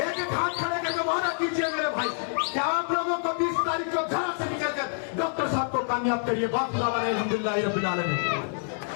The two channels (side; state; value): right; silent; 60 dB below the other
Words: एक एक हाथ खड़े करके वादा कीजिए मेरे भाई कि आप लोगों को 20 तारीख को घर से निकलकर डॉक्टर साहब को कामयाब करिए। बात अल्हम्दुलिल्लाह रब्बिल आलमीन।